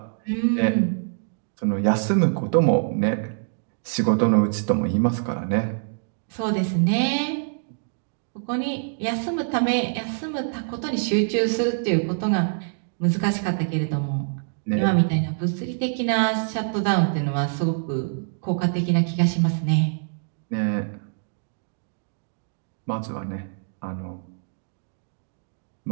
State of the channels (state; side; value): silent; left; digital silence